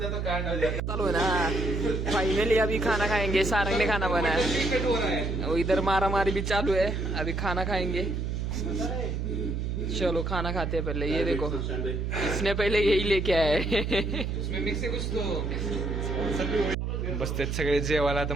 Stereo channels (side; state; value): right; noise; hum, 2 dB below the sound